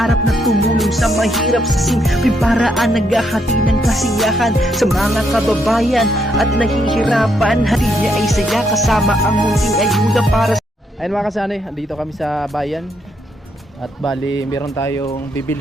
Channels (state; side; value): normal; both; correlation 0.76